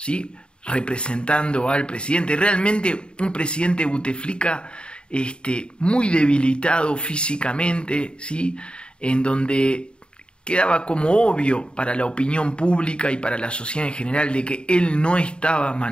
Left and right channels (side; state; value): right; late; 0.052 ms